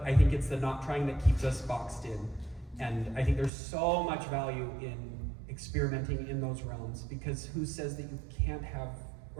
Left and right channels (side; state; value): left; drops out; at 3.5 s